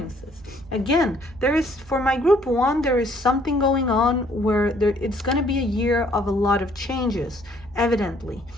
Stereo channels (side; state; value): both; normal; correlation 0.63